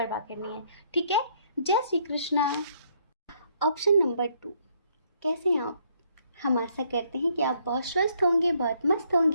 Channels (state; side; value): inverted; both; correlation -0.68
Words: करनी है। ठीक है, जय श्री कृष्णा। ऑप्शन नंबर 2, कैसे हैं आप? हम आशा करते हैं कि आप बहुत स्वस्थ होंगे, बहुत मस्त